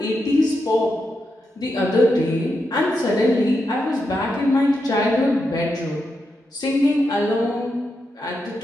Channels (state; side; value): normal; both; correlation 0.85